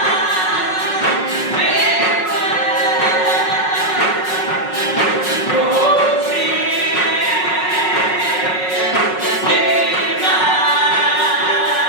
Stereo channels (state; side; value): late; right; 5.4 ms